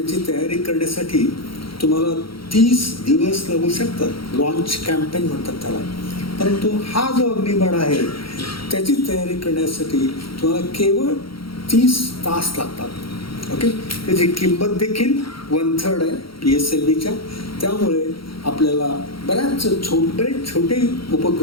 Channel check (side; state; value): right; late; 0.74 ms